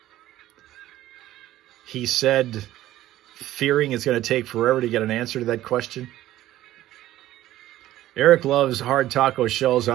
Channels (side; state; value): left; quieter; 14.4 dB